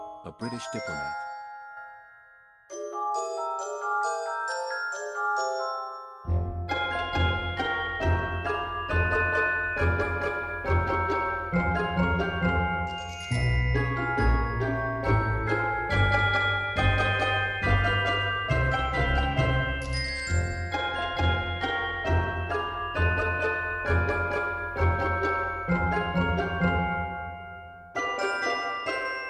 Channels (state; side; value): identical; both; correlation 1.00